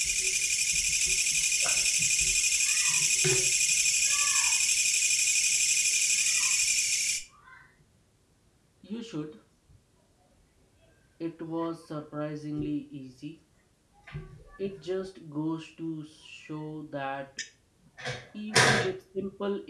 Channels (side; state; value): both; identical; correlation 1.00